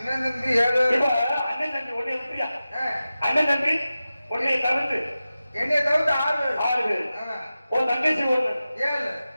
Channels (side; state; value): both; inverted; correlation -0.95